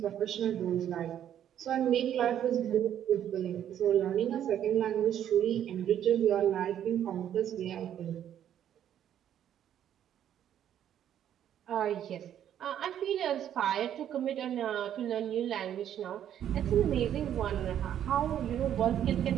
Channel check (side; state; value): left; quieter; 10.3 dB